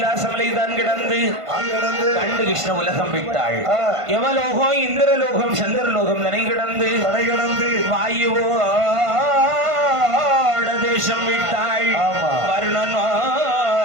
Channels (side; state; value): left; late; 1.5 ms